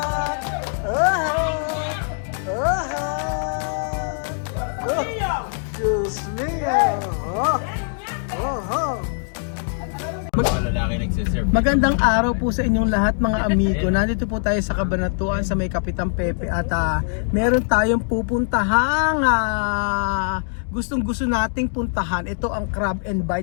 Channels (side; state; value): right; silent; digital silence